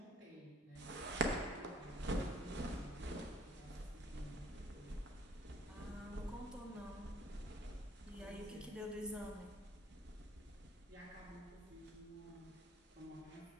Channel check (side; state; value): both; normal; correlation 0.57